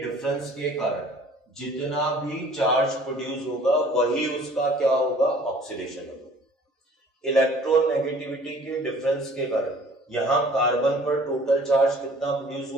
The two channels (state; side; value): normal; both; correlation 0.52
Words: डिफरेंस के कारण जितना भी चार्ज प्रोड्यूस होगा वही उसका क्या होगा? Oxidation number. इलेक्ट्रॉन नेगेटिविटी के डिफरेंस के कारण यहां कार्बन पर टोटल चार्ज कितना प्रोड्यूस